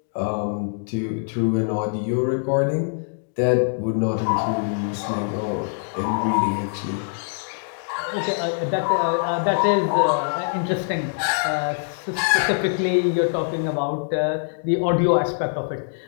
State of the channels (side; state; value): right; silent; digital silence